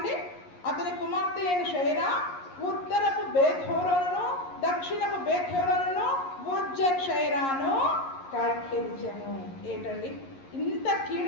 అతని కుమార్తె అయిన షైరా ఉత్తరపు బేత్‌హోరోనును దక్షిణపు బేత్‌హోరోనును ఉజ్జన్ షైరాను కట్టించెను. ఏంటండి, ఇంత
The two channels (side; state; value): right; late; 11 ms